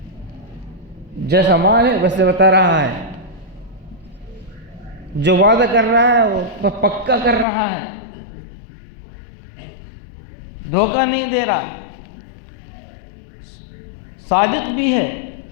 جیسا مال ہے ویسے بتا رہا ہے، جو وعدہ کر رہا ہے وہ پکا کر رہا ہے، دھوکہ نہیں دے رہا، صادق بھی ہے،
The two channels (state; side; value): drops out; right; at 7.5 s